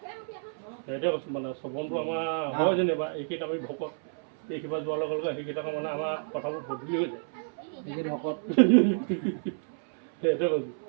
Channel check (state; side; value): silent; left; 58 dB below the other